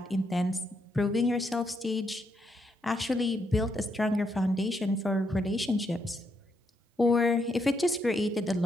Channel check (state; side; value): normal; both; correlation 0.78